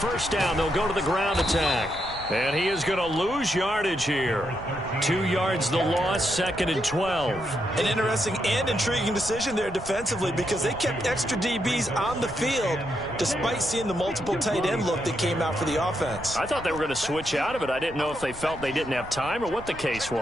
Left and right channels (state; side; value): noise; right; rumble, 15 dB below the sound